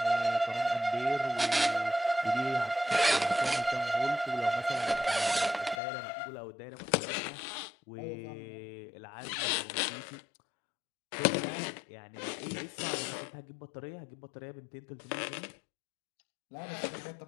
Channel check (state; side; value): drops out; right; at 5.8 s